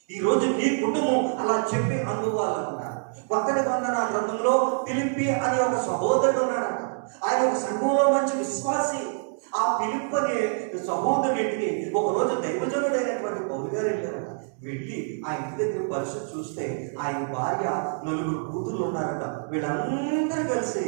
ఈ రోజు నీ కుటుంబం అలా చెప్పి అందుకోవాలన్నారు. కొత్త నిబంధన గ్రంథంలో ఫిలిప్పి అనే ఒక సహోదరుడు ఉన్నాడంట. ఆయన ఒక సంఘంలో మంచి విశ్వాసి. ఆ ఫిలిప్ అనే సహోదరుడికి ఒక రోజు దైవజనుడైనటువంటి పౌలు గారు వెళ్ళారట. వెళ్ళి ఆ ఇంటి దగ్గర పరిస్థితి చూస్తే ఆయన భార్య, 4 కూతుర్లు ఉన్నారట. వీళ్ళందరూ కలిసి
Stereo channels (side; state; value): left; silent; digital silence